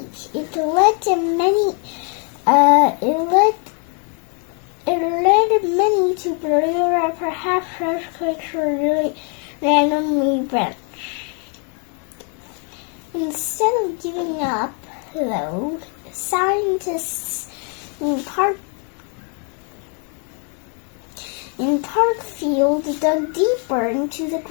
It led to many. It led many to believe that perhaps earthquakes were really randomly events. Instead of giving up, though, scientists in Parkfield dug deeper into the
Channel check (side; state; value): right; quieter; 38.5 dB